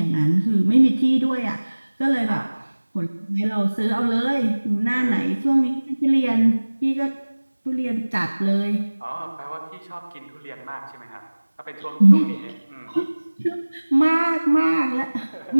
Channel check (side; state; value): both; inverted; correlation -1.00